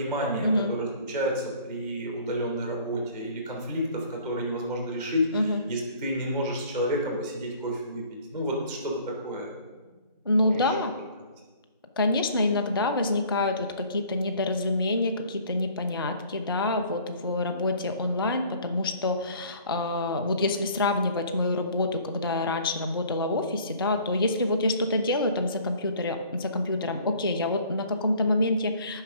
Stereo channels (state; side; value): inverted; both; correlation -0.52